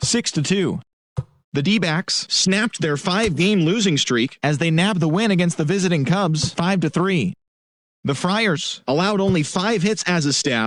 6-2. The D-backs snapped their 5-game losing streak as they nabbed the win against the visiting Cubs, 5-3. The Friars allowed only 5 hits as a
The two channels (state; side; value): identical; both; correlation 1.00